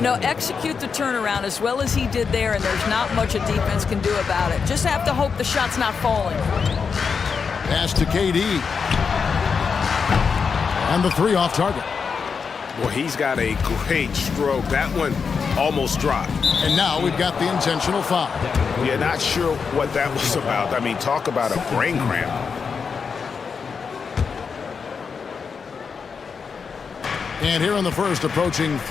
know, execute the turnaround as well as he did there, and there's not much a defense can do about it. Just have to hope the shot's not falling. Pass to KD. And the 3 off target. Well, he's got a great stroke. That one almost dropped. And now we've got the intentional foul. Yeah, not sure what that was about. I mean, talk about a brain cramp. And here in the first, approaching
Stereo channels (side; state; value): right; quieter; 5.7 dB